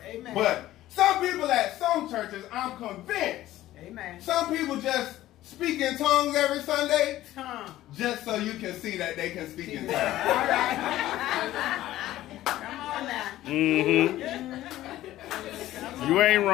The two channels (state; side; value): quieter; right; 14.7 dB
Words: Amen. but some people at some churches, I'm convinced, Amen. some people just speak in tongues every Sunday Huh. just so you can see that they can speak in All tongues. right. Come on now. You ain't